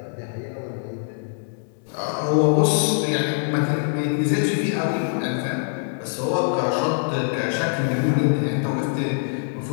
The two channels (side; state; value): right; silent; digital silence